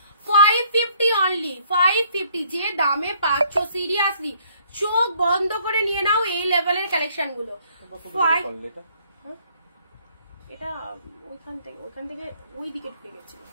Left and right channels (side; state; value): both; inverted; correlation -0.63